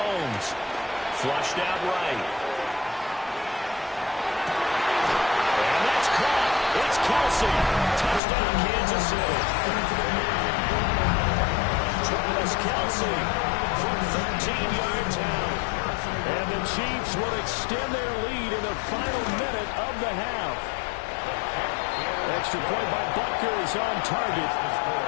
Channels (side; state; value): right; drops out; at 8.2 s